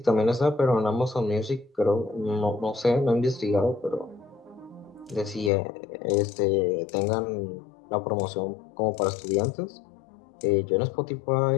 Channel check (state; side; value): drops out; right; at 5.5 s